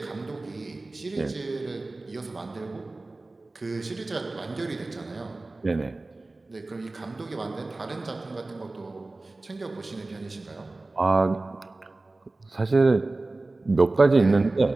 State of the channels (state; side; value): quieter; left; 3.1 dB